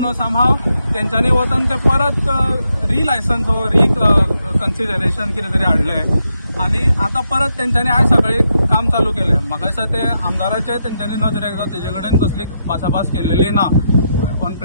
know somehow तेंच्यांनी वचून ते परत रिलायसन्स री कन्सिडरेशन कितें तरी हाडलें आनी आतां परत तेंच्यांनी आयज सकाळीं काम चालू केलें. म्हाका दिसता ते आमदाराचे तेंच्यांनी नदरेक जावं तेजे कडेन कसली भासाभास केल्लेली ना ऑन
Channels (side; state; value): both; inverted; correlation -0.81